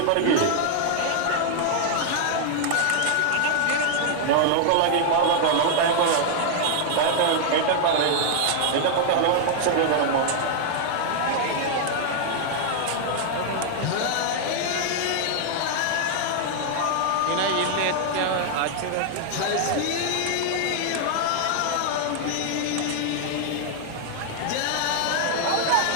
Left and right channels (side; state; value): both; different; correlation -0.01